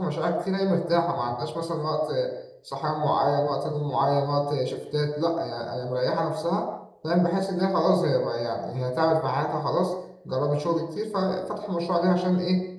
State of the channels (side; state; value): both; identical; correlation 1.00